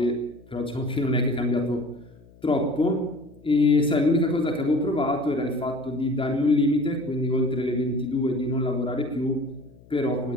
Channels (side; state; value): left; noise; hum, 25 dB below the sound